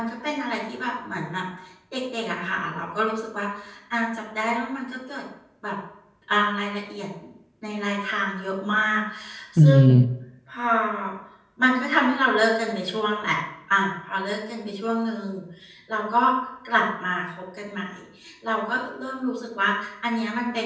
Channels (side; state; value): both; identical; correlation 1.00